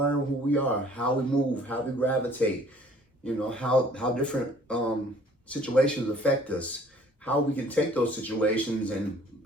who we are, how we move, how we gravitate, you know, how different situations affect us, how we can take those situations and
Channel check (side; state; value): both; normal; correlation 0.55